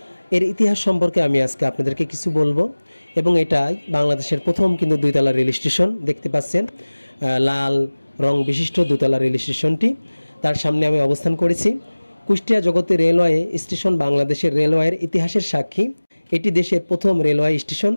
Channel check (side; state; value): both; inverted; correlation -1.00